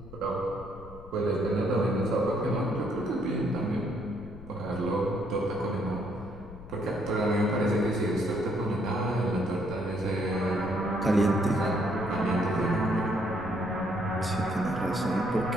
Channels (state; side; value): noise; left; rumble, 16 dB below the sound